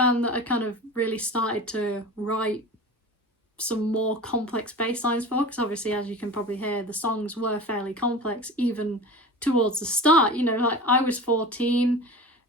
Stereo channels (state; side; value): normal; both; correlation 0.33